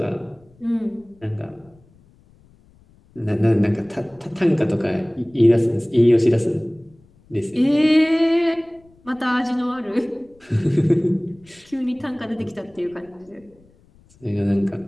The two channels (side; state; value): left; noise; rumble, 30 dB below the sound